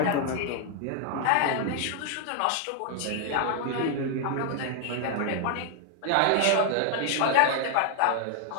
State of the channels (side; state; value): both; different; correlation 0.00